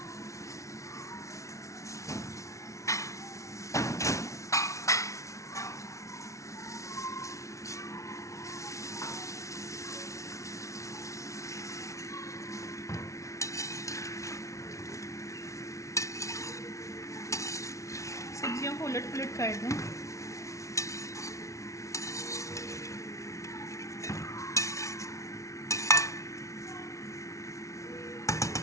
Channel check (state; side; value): late; right; 0.14 ms